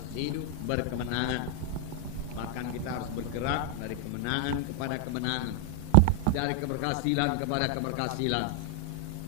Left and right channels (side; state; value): both; different; correlation 0.00